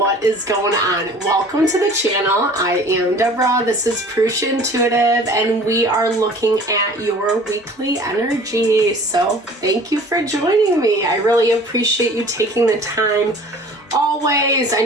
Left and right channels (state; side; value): normal; both; correlation 0.47